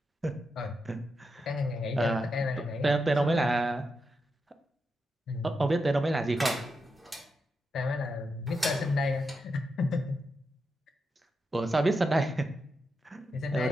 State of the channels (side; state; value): both; normal; correlation 0.86